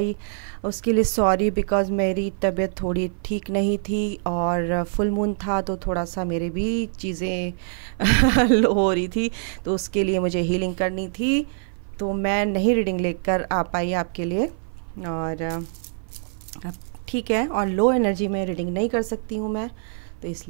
उसके लिए सॉरी, बिकॉज़ मेरी तबीयत थोड़ी ठीक नहीं थी और फुल मून था तो थोड़ा सा मेरे भी चीज़ें लो हो रही थी, तो उसके लिए मुझे हीलिंग करनी थी, तो मैं नहीं रीडिंग लेकर आ पाई आपके लिए। और अब ठीक है, और लो एनर्जी में रीडिंग नहीं कर सकती हूँ मैं, तो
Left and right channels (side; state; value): left; silent; 55 dB below the other